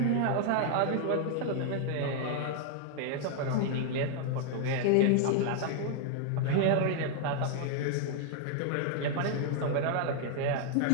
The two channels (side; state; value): both; different; correlation 0.00